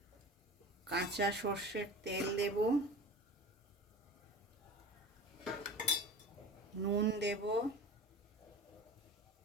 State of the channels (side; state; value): both; normal; correlation 0.36